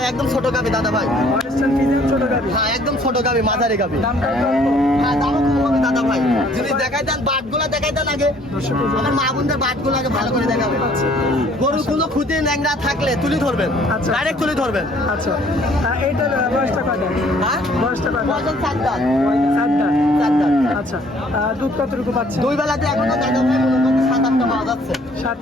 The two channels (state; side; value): normal; both; correlation 0.59